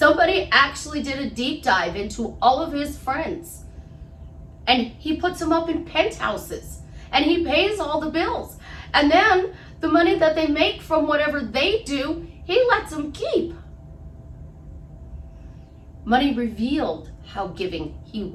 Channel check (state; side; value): identical; both; correlation 1.00